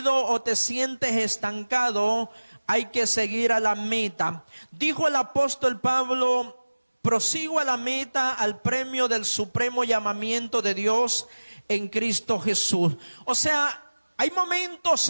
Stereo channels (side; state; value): both; inverted; correlation -1.00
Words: o te sientes estancado, hay que seguir a la meta. Dijo el apóstol Pablo, prosigo a la meta, al premio del supremo llamamiento de Dios en Cristo Jesús. O sea, hay momentos